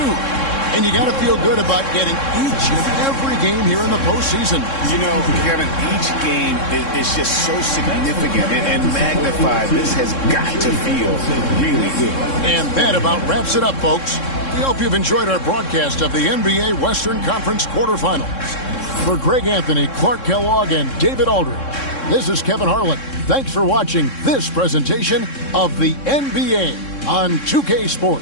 And you got to feel good about getting each and every game here in the postseason. You know, Kevin, each game is just so significant and magnified. This has got to feel really good. And that about wraps it up, folks. We hope you've enjoyed our broadcast of the NBA Western Conference quarterfinals. For Greg Anthony, Clark Kellogg, and David Aldridge, this is Kevin Harlan. Thanks for watching this presentation of the NBA on 2K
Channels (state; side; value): late; right; 3.7 ms